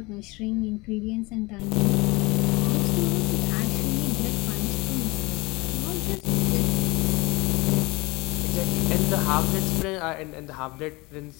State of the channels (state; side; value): quieter; right; 24.0 dB